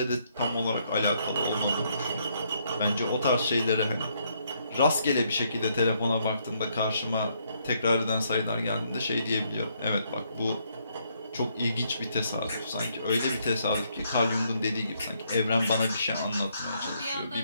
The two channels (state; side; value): inverted; both; correlation -0.72